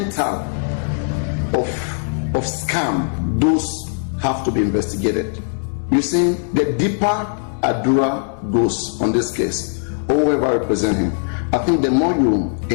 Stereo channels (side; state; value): right; silent; digital silence